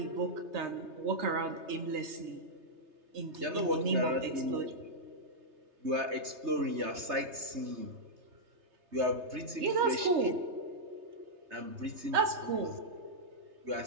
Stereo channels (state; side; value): late; left; 3.3 ms